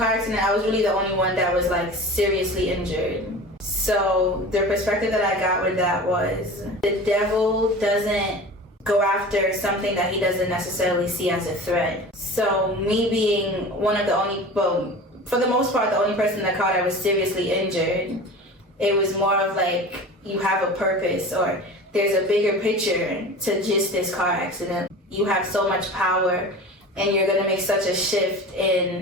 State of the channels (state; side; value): normal; both; correlation 0.36